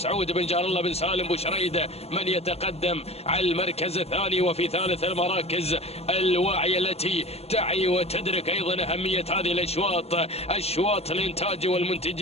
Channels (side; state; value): right; late; 0.30 ms